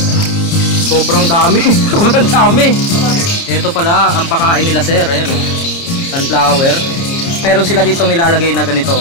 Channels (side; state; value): right; late; 30 ms